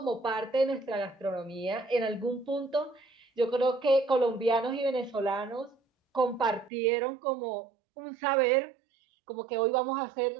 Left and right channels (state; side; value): drops out; left; at 6.7 s